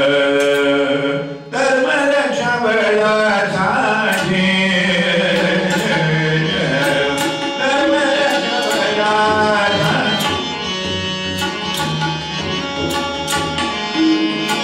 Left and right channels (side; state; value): both; identical; correlation 1.00